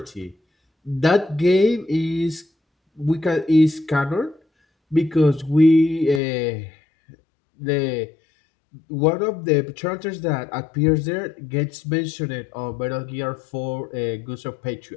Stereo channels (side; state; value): right; drops out; at 6.2 s